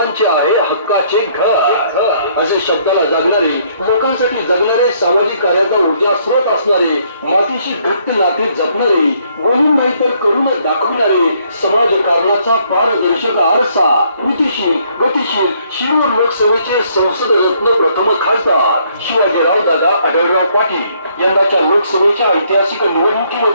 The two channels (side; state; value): both; inverted; correlation -0.67